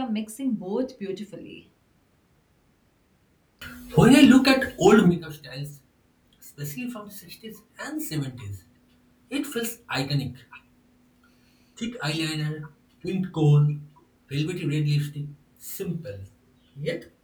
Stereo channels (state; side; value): identical; both; correlation 1.00